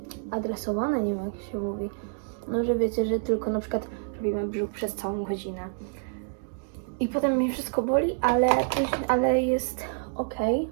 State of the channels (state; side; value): silent; left; digital silence